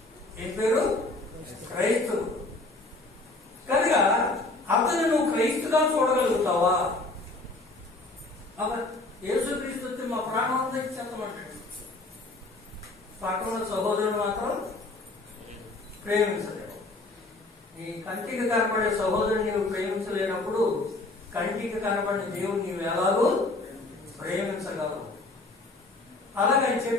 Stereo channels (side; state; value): right; quieter; 3.1 dB